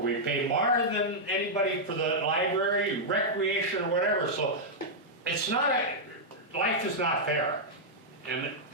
pay more than anybody for the library, recreation, or whatever. So it's not, life is not fair. And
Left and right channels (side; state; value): both; normal; correlation -0.06